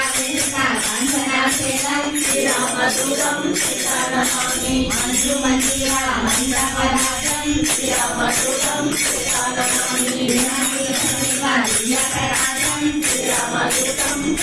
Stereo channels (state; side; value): identical; both; correlation 1.00